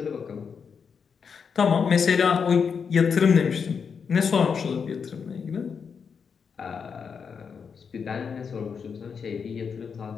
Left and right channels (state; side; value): quieter; right; 6.2 dB